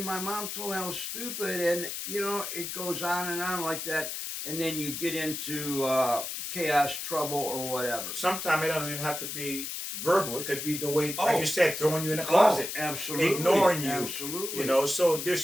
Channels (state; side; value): noise; left; hiss, 5 dB below the sound